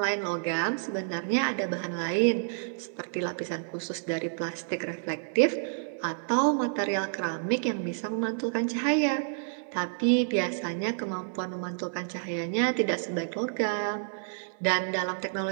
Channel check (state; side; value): silent; left; digital silence